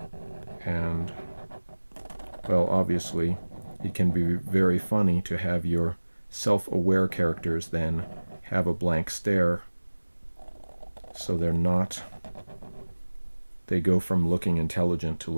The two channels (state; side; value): inverted; both; correlation -1.00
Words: And, well, obviously, it can be very funny to have your self-aware characters then have a blank stare, so they go from looking intelligent to